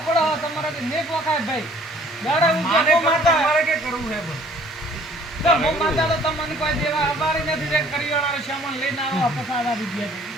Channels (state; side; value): normal; both; correlation 0.56